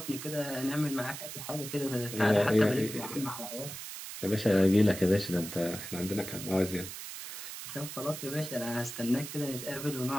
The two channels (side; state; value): right; noise; hiss, 9 dB below the sound